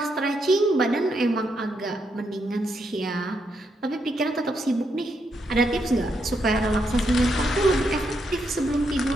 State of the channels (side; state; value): both; normal; correlation 0.79